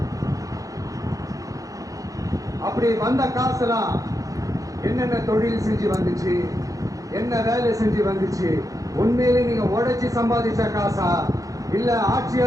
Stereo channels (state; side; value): late; left; 0.17 ms